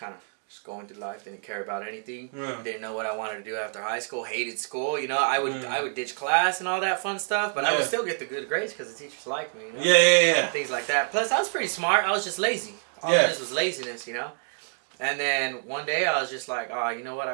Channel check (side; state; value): left; silent; digital silence